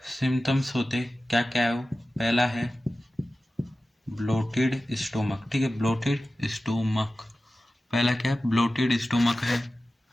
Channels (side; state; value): both; normal; correlation 0.95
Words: सिम्टम्स होते, क्या क्या है वो, पहला है ब्लोटेड स्टोमक, ठीक है, ब्लोटेड स्टोमक, पहला क्या है, ब्लोटेड स्टोमक है।